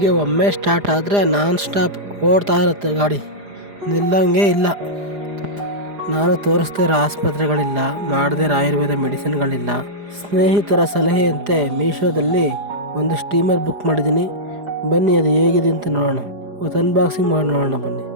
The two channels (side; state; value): left; late; 4.9 ms